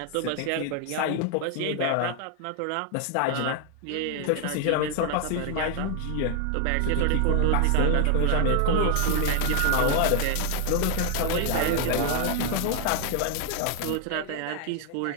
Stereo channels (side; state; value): both; different; correlation 0.00